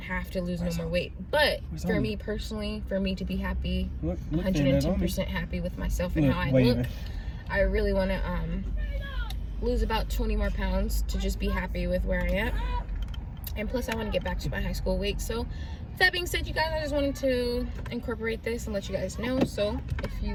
to lose no more weight. But for me personally, for me to be happy, 110% happy with myself and how I look, I really want to lose about 20 more pounds to just be happy with where I am. And plus I want to get back to my high school weight. So that being said, you guys, I just wanted to incorporate this and let you guys know. So if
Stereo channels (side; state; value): both; identical; correlation 1.00